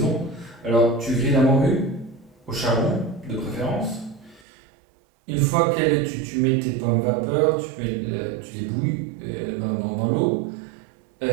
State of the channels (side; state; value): left; drops out; at 4.4 s